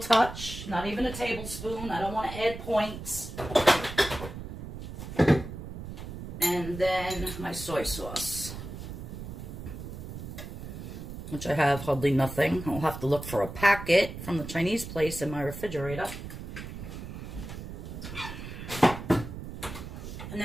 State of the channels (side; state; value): right; noise; rumble, 9 dB below the sound